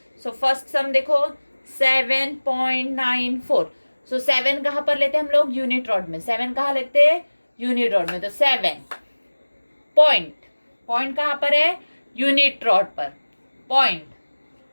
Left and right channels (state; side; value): inverted; both; correlation -1.00